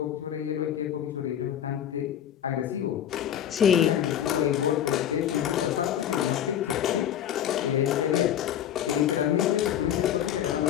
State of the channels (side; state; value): right; quieter; 10.3 dB